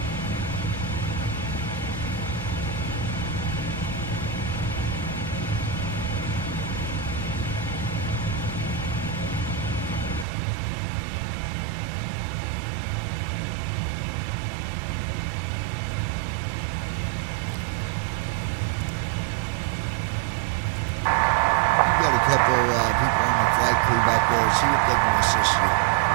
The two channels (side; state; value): left; drops out; at 10.2 s